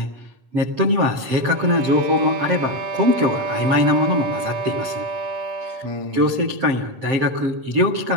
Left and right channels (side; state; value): left; late; 7.6 ms